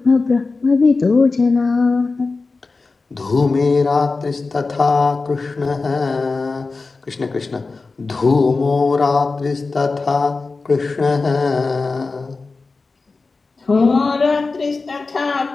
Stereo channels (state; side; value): quieter; right; 3.9 dB